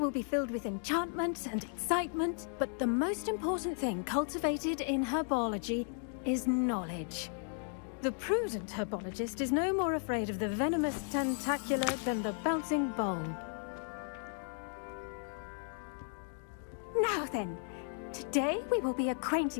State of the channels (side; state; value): right; silent; 54 dB below the other